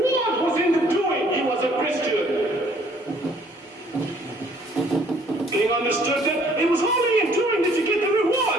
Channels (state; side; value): normal; both; correlation 0.60